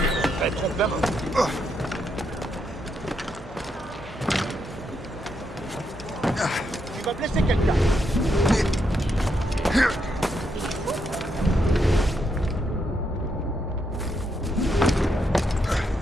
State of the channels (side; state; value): both; normal; correlation 0.80